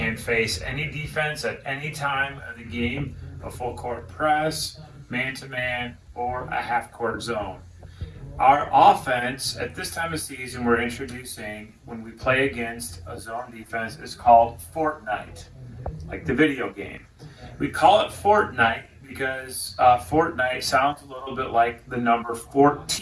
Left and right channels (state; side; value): identical; both; correlation 1.00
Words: face any defense at any time of the game, a full court press, man to man, or a half court zone. Our offense at this time of season we're introducing when we play against a zone defense is called Fortnite, like the video game. We call it Fortnite because Fortnite sounds a little bit like the number